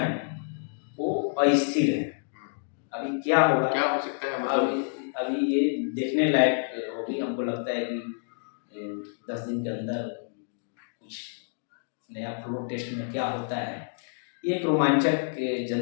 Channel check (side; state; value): right; silent; digital silence